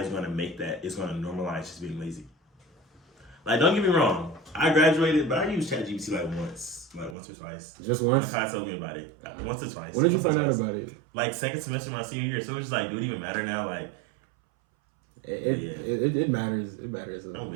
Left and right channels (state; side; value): drops out; left; at 7.2 s